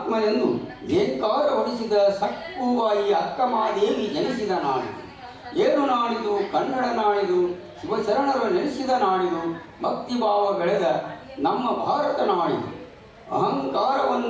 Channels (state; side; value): identical; both; correlation 1.00